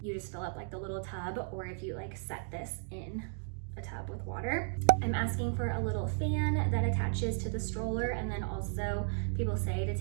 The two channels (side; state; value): left; silent; 55 dB below the other